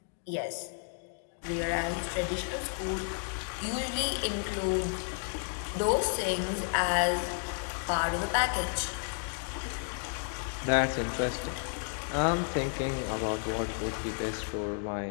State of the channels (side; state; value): right; silent; 56 dB below the other